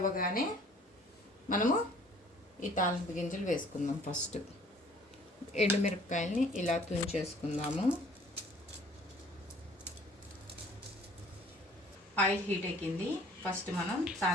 మనము ఈ తాలింపు గింజలు వేసుకుందాం. ఫస్ట్ ఎండుమిరపకాయల్ని ఇలా తుంచేసుకుందాము. ఆయిల్ హీట్ ఎక్కింది. ఫస్ట్ మనం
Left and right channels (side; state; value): both; normal; correlation 0.54